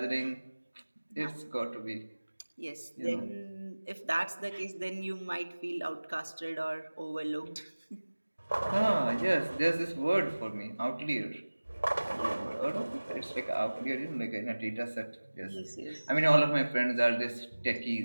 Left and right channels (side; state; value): both; inverted; correlation -1.00